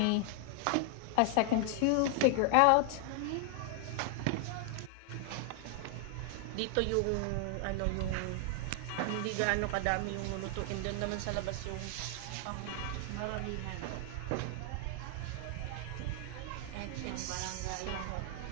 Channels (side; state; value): both; different; correlation 0.00